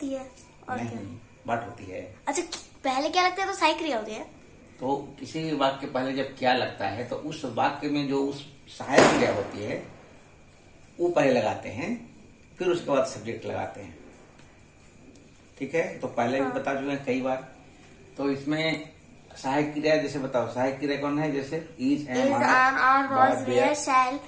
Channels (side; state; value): both; identical; correlation 1.00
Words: है और नहीं, क्या? व्हाट होती है। अच्छा, पहले क्या लगता है तो सहायक क्रिया होती है। तो किसी भी वाक्य के पहले जब क्या लगता है तो उस वाक्य में जो उस सहायक क्रिया होती है वो पहले लगाते हैं, फिर उसके बाद सब्जेक्ट लगाते हैं। ठीक है, तो पहले भी बता चुके हैं कई बार। तो इसमें सहायक क्रिया जैसे बताओ, सहायक क्रिया कौन है? जैसे is am are was were shall